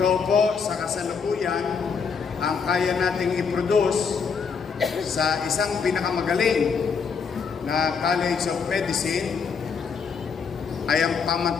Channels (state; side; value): quieter; right; 5.8 dB